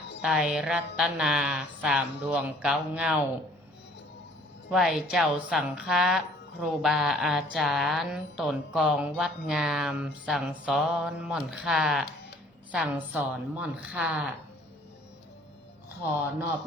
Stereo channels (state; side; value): normal; both; correlation 0.56